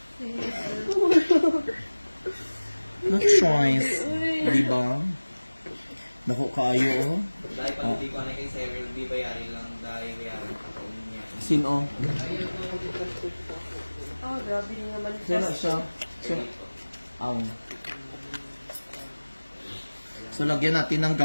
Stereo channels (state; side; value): inverted; both; correlation -1.00